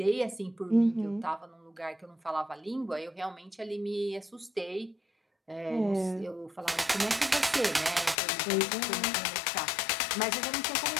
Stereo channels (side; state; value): right; drops out; at 8.2 s